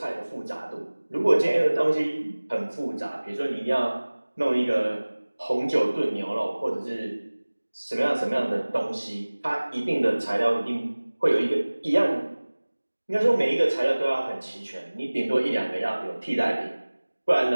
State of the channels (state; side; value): inverted; both; correlation -1.00